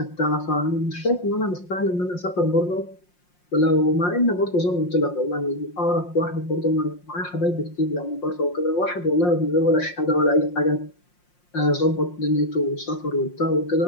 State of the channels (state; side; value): late; right; 5.6 ms